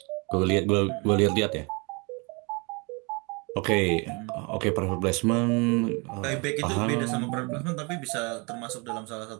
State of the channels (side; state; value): left; quieter; 30.3 dB